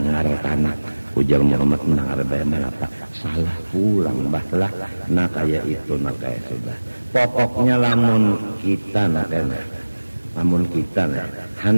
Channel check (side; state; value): both; inverted; correlation -1.00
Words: tanah ujar Muhammad mendengar bayar apa salah pulang bahlah. Nah kayak itu nah kayak sudah pokoknya lamun kita